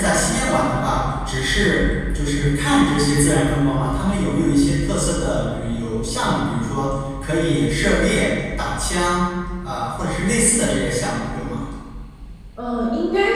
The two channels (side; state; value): both; identical; correlation 1.00